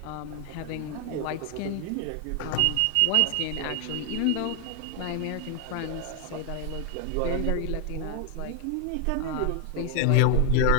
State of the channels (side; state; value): both; different; correlation 0.00